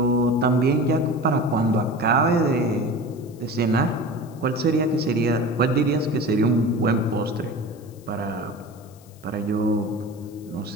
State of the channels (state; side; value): noise; left; hiss, 27 dB below the sound